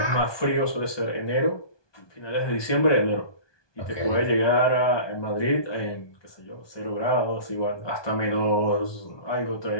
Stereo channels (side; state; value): right; late; 1.2 ms